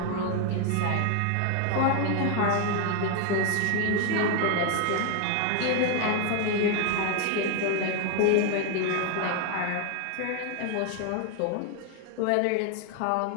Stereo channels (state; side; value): different; both; correlation 0.01